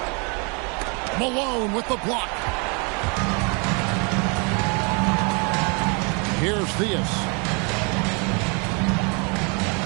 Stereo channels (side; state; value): left; quieter; 33.2 dB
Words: Malone with the block. Here's Theus.